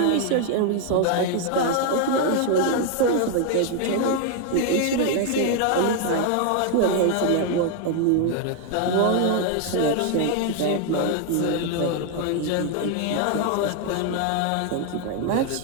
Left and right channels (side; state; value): both; different; correlation 0.01